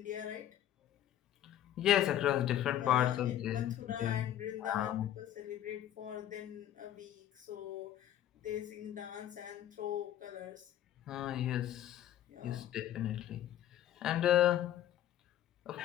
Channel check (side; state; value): right; quieter; 11.8 dB